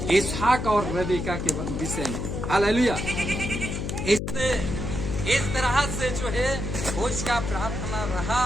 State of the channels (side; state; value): left; noise; hum, 4 dB below the sound